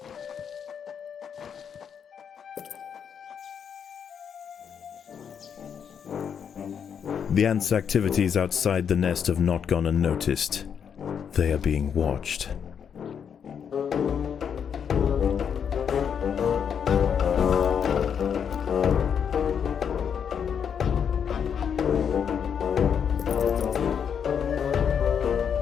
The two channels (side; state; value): right; quieter; 7.6 dB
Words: The ants' activities outside the nest have not gone unnoticed. They are being watched.